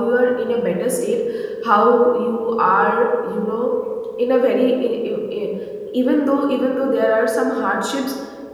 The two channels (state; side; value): identical; both; correlation 1.00